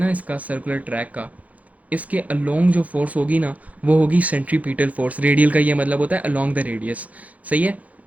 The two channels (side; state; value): left; late; 0.071 ms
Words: इसका, सर्कुलर ट्रैक का, इसके अलोंग जो फोर्स होगी ना, वो होगी सेंट्रीपिटल फोर्स। रेडियल का ये मतलब होता है अलोंग द रेडियस। सही है।